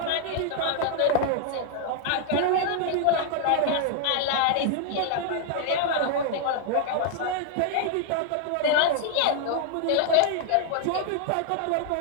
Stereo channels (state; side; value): different; both; correlation 0.00